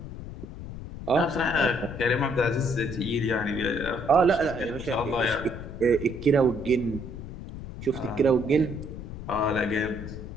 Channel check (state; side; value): noise; left; rumble, 10 dB below the sound